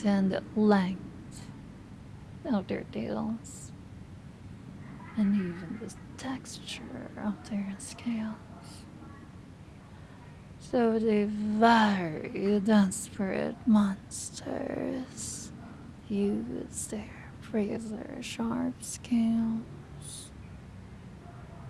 and the length of their tails, and even the texture of their scales. So the very desperate monsters use their razor sharp scales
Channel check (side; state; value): both; identical; correlation 1.00